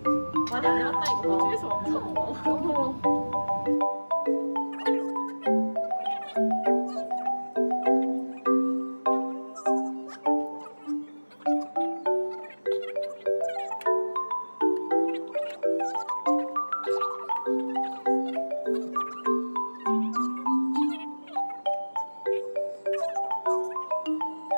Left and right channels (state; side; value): inverted; both; correlation -1.00